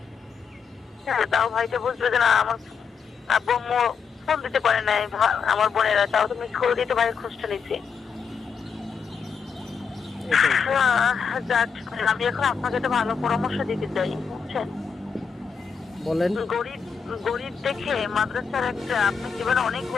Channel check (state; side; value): quieter; right; 6.1 dB